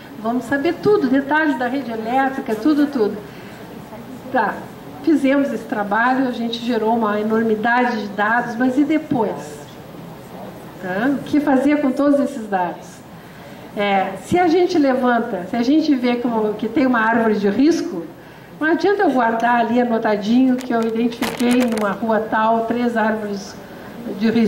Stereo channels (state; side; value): identical; both; correlation 1.00